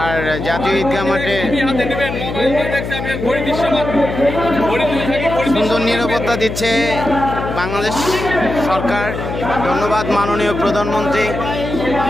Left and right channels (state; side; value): noise; left; hum, 6 dB below the sound